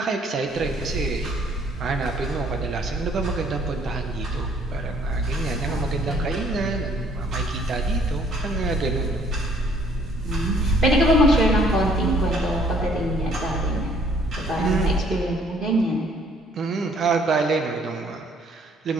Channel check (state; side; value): normal; both; correlation 0.62